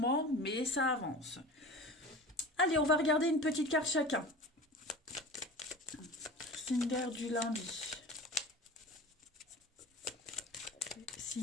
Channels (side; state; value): both; normal; correlation 0.36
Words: mais ça avance. Allez, on va regarder une petite carte chacun. Signe d'air du lundi.